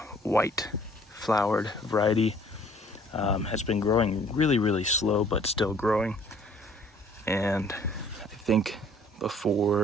white flowered variety, has been growing really slow, but still growing. And I think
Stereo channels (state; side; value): normal; both; correlation 0.57